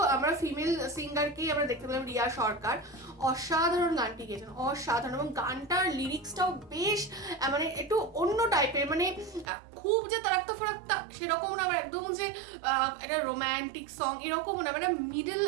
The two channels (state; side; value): drops out; left; at 9.5 s